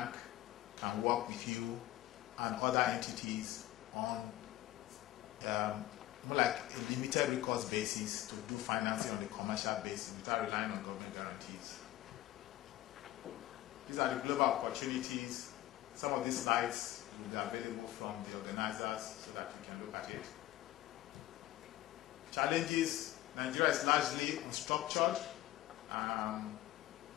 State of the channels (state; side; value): quieter; right; 15.2 dB